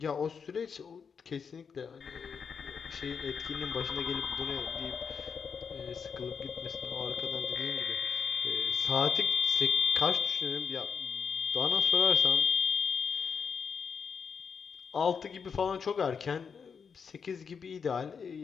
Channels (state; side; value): quieter; right; 6.2 dB